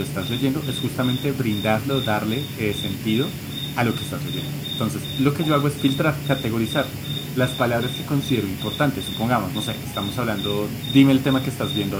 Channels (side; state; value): both; identical; correlation 1.00